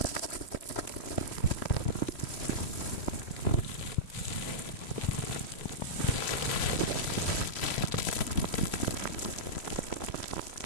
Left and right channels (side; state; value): right; late; 3.1 ms